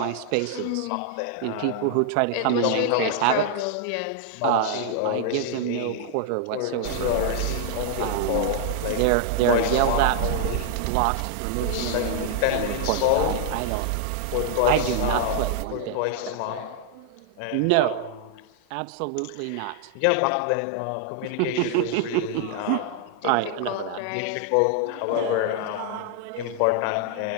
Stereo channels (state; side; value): different; both; correlation 0.00